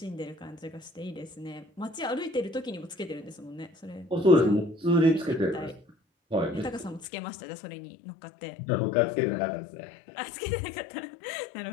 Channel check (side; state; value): right; drops out; at 7.1 s